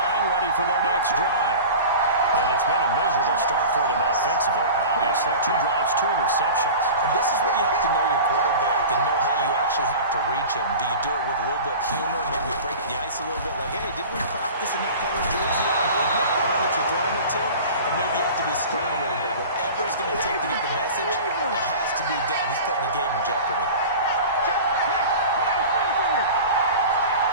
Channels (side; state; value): both; inverted; correlation -0.36